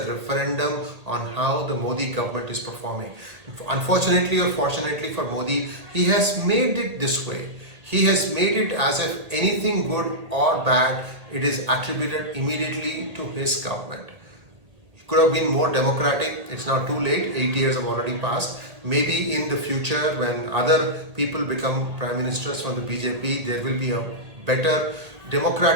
referendum on how the Modi government is performing. Unfortunately or fortunately for Modi, he has made it this way. He has made it as if anything good or bad, it is attributed immediately to his government. It could have been more democratic. It's now too late. 8 years have already passed. Maybe in the future, when other people become prime ministers from the BJP, there will be a better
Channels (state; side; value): late; left; 1.8 ms